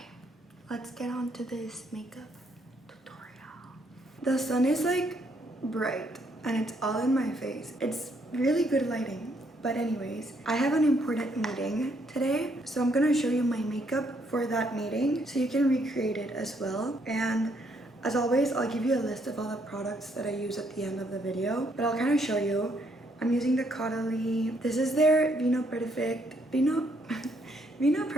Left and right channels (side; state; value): both; normal; correlation 0.71